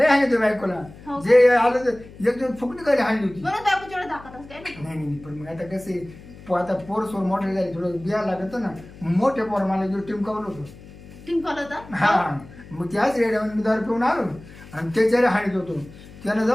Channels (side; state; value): left; noise; hum, 19 dB below the sound